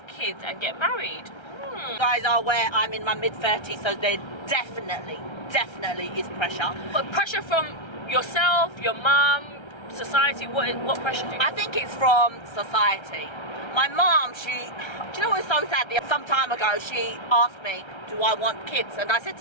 kids and get married? You guys are aware I'm in my mid-30s, so there definitely is pressure. But pressure from yourself, your mum, society, what pressure do you? I think it's from society. My mom, do you know what's so sad? Some time ago, she asked me, do I want kids? And I said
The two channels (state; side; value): late; right; 1.3 ms